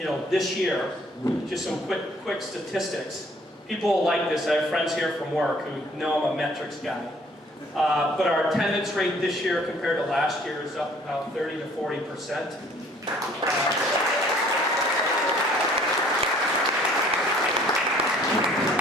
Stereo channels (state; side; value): normal; both; correlation 0.57